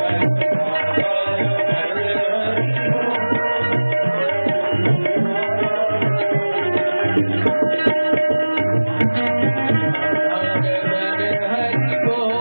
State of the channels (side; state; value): both; inverted; correlation -1.00